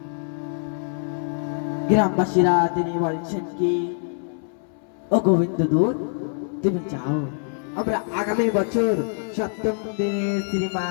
গ্রামবাসীরা তিনি বলছেন কি, ও গোবিন্দ দূত তুমি যাও, আমরা আগামী বছর সপ্তম দিনের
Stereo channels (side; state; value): right; silent; 62 dB below the other